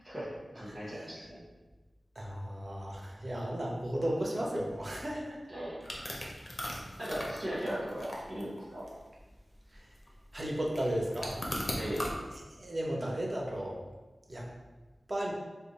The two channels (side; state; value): both; normal; correlation 0.96